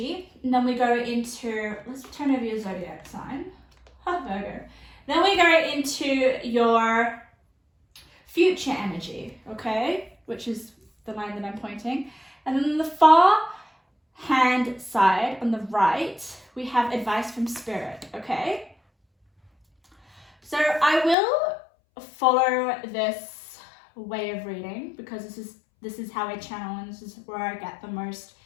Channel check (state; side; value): drops out; right; at 21.2 s